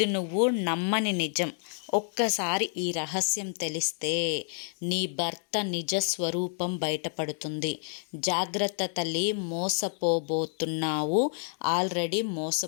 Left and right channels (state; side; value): silent; right; 59 dB below the other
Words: నువ్వు నమ్మని నిజం. ఒక్కసారి ఈ రహస్యం తెలిస్తే నీ భర్త నిజ స్వరూపం బయటపడుతుంది. జాగ్రత్త తల్లి, మోసపోబోతున్నావు, ఆల్రెడీ